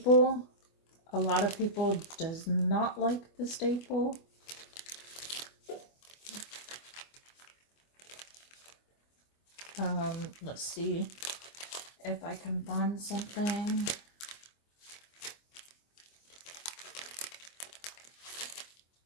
A lot of people does not like the staple. Let's see if I can find something.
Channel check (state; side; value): late; right; 25 ms